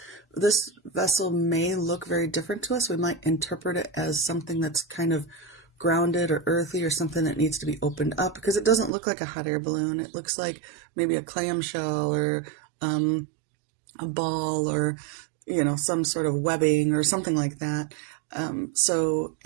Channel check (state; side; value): drops out; left; at 8.9 s